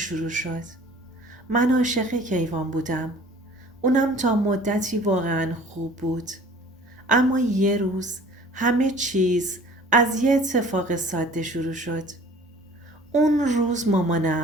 شد. من عاشق کیوان بودم. اونم تا مدتی واقعا خوب بود. اما یه روز همه چیز از یه اتفاق ساده شروع شد. اون روز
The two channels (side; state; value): both; normal; correlation 0.48